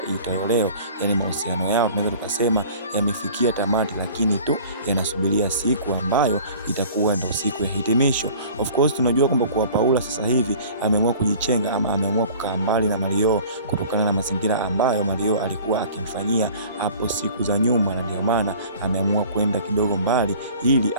iitwayo leo. Yani mahusiano yao tunaweza tukasema yamefikia tamati, lakini tu yanasubiria siku ambayo itakuwa ndio siku ya hitimisho. Of course tunajua kwamba kwa Paula sasa hivi ameamua kujichenga ama ameamua kukaa mbali na Mario kutokana na mazingira ambayo Mario alikuwa akimfanyia hapo siku za nyuma, na ndio maana ameamua kwenda kidogo mbali ili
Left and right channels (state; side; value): inverted; both; correlation -0.46